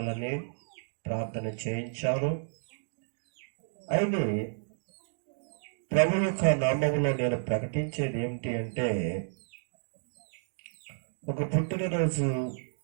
ప్రార్థన చేయించారు. అయితే ప్రభు యొక్క నామములో నేను ప్రకటించేది ఏమిటి అంటే, ఒక పుట్టినరోజు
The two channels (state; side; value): silent; left; digital silence